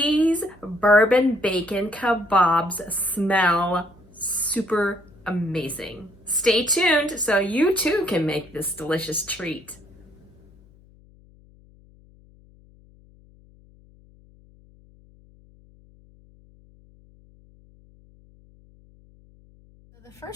bourbon bacon kebabs smell super amazing. Stay tuned so you too can make this delicious treat. So the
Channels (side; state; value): left; noise; hum, 27 dB below the sound